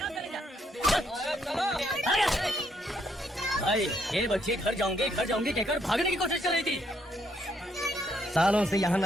भाई ये बच्ची घर जाऊंगी कहकर भागने की कोशिश कर रही थी। सालों से यहाँ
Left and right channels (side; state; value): both; normal; correlation 0.73